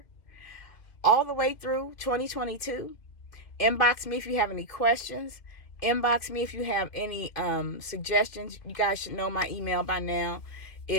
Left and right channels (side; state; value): right; late; 2.5 ms